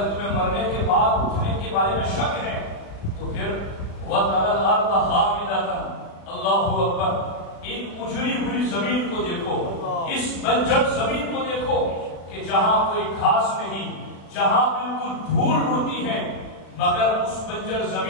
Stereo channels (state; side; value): late; right; 36 ms